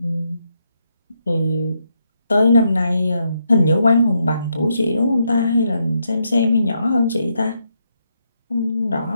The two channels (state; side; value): inverted; both; correlation -0.79